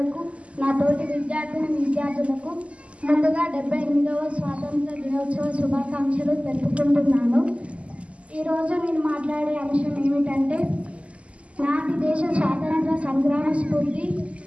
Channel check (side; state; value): left; late; 0.061 ms